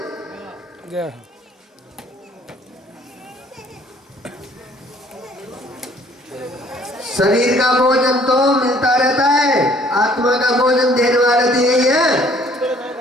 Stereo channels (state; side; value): normal; both; correlation 0.58